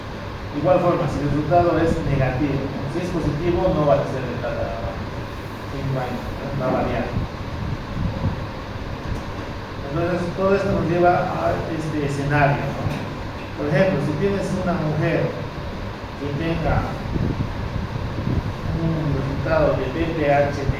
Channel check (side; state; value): both; identical; correlation 1.00